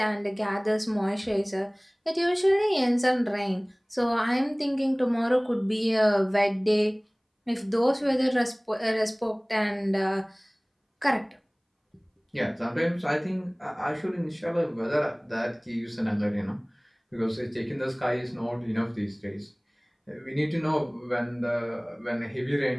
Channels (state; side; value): identical; both; correlation 1.00